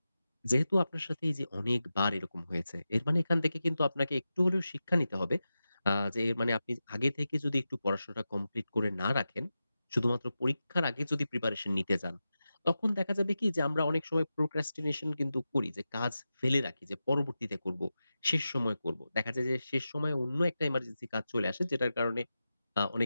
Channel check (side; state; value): both; inverted; correlation -0.92